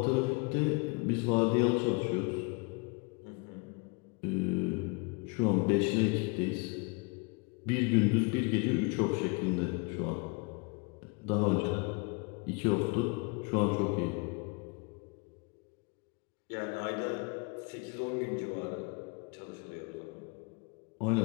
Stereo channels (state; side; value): quieter; right; 31.4 dB